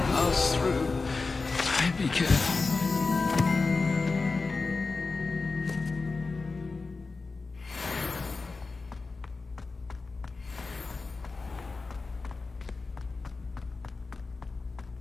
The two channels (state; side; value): quieter; right; 4.0 dB